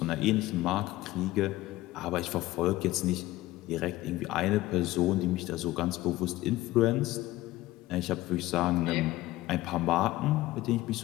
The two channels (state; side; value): quieter; right; 17.2 dB